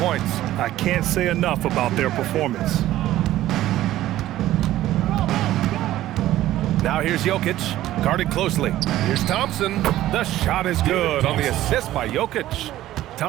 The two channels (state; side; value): quieter; left; 14.4 dB